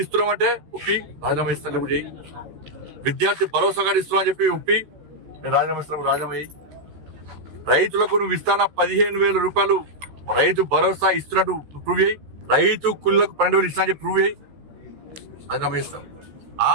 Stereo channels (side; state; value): left; late; 14 ms